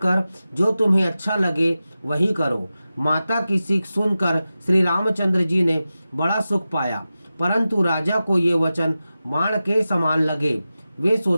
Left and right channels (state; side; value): inverted; both; correlation -0.94